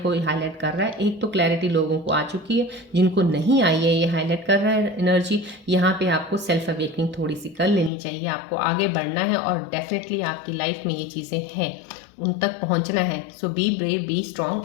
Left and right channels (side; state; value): right; drops out; at 7.9 s